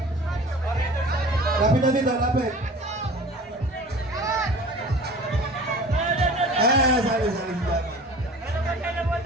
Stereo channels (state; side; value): normal; both; correlation 0.42